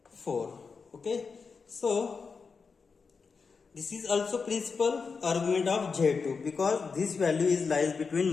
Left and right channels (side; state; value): right; quieter; 5.1 dB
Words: 4. Okay, so this is also principal argument of Z2, because this value is lies between